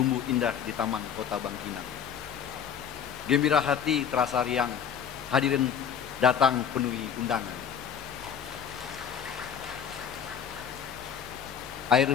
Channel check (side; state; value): right; quieter; 7.9 dB